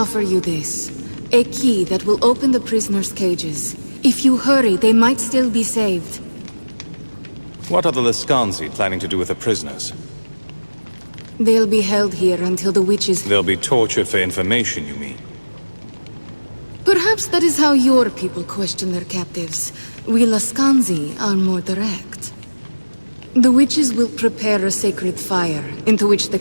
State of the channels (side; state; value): both; inverted; correlation -1.00